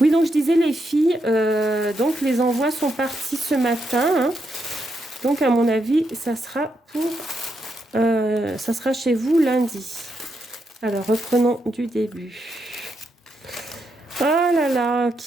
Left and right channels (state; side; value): normal; both; correlation 0.81